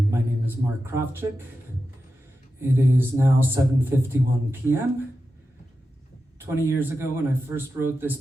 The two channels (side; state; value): both; normal; correlation 0.91